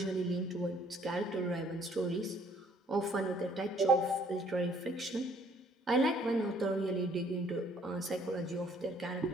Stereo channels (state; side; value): normal; both; correlation 0.61